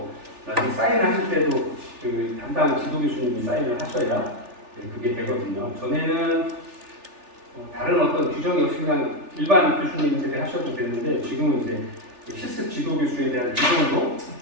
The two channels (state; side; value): late; left; 3.4 ms